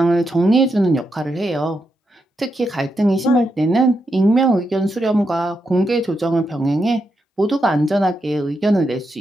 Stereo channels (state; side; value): normal; both; correlation 0.84